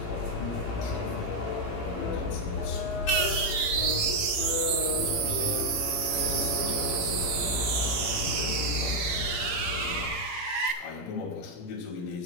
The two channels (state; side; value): late; right; 17 ms